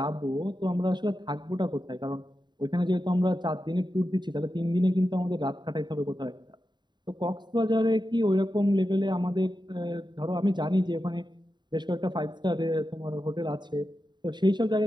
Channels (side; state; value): left; late; 0.21 ms